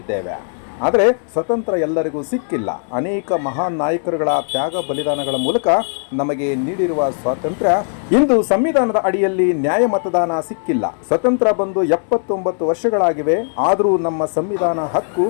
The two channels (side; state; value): right; silent; digital silence